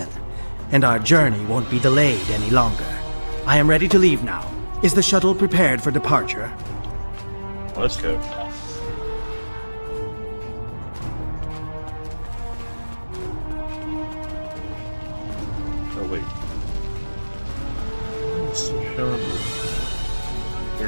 and our journey won't be delayed any longer. I am ready to leave now. Is the shuttle prepared for departure? Let's go. Oh, wait. Let's show him.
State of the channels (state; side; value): inverted; both; correlation -1.00